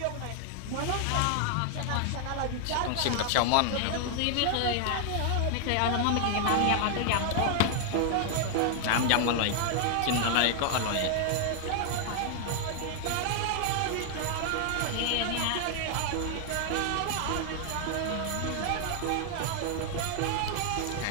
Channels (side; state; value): both; different; correlation 0.00